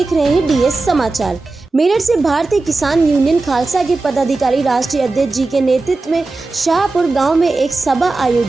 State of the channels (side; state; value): left; quieter; 3.4 dB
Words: रहे हैं डीएस समाचार। मेरठ से भारतीय किसान यूनियन खालसा के पदाधिकारी राष्ट्रीय अध्यक्ष जी के नेतृत्व में शाहपुर गांव में एक सभा